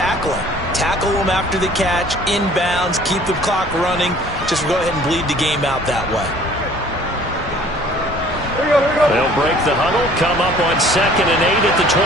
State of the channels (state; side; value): normal; both; correlation 0.53